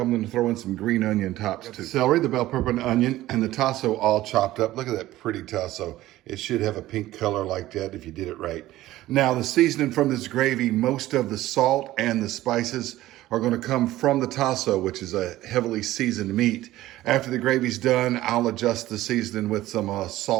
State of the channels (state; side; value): quieter; left; 15.6 dB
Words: going to throw in some green onion tops too. Celery, the bell pepper and onion, and the Tasso all chopped up. Look at that pretty Tasso. It should have a pink color like that if you did it right. Now the seasoning from this gravy, most of the salt and the spices are going to come from the Tasso, which is a heavily seasoned meat. After the gravy's done, I'll adjust the seasoning with some